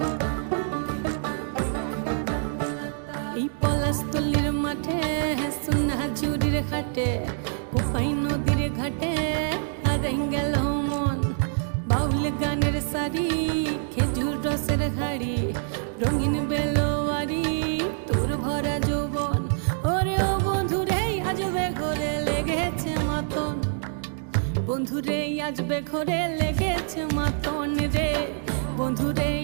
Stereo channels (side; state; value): left; silent; 61 dB below the other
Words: এই পলাশতলির মাঠে সোনা ঝুড়ির হাটে কোপাই নদীর ঘাটে হারাই গেল মন বাউল গানের সারি খেজুর রসের হাড়ি রঙিন বেলোয়ারি তোর ভরা যৌবন ওরে ও বন্ধুরে আজবে ঘরে লেগেছে মাতন বন্ধুরে আজবে ঘরে লেগেছে মাতন রে বন্ধুরে